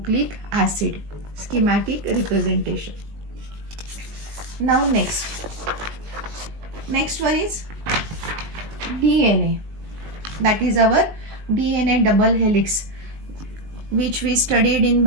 acid. Schematic representation. Now next one is DNA. That is our DNA double helix, which we studied in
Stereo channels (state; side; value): late; left; 20 ms